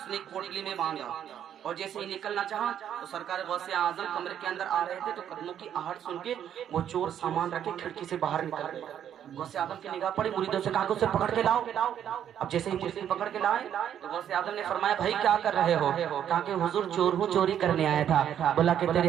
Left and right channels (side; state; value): left; quieter; 9.7 dB